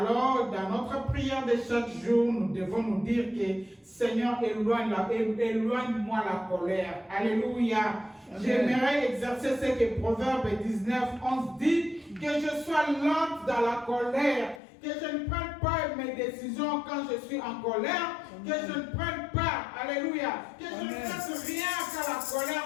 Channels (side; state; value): right; drops out; at 14.6 s